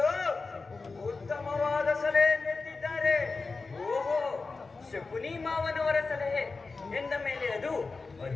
ಉತ್ತಮವಾದ ಸಲಹೆ ನೀಡಿದ್ದಾರೆ. ಓಹೋ, ಶಕುನಿ ಮಾವನವರ ಸಲಹೆ ಎಂದ ಮೇಲೆ ಅದು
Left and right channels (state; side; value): quieter; right; 4.1 dB